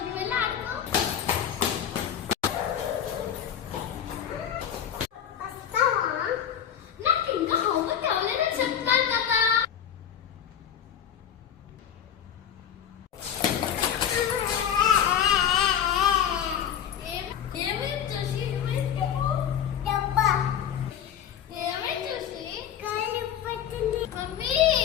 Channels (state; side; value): quieter; right; 9.3 dB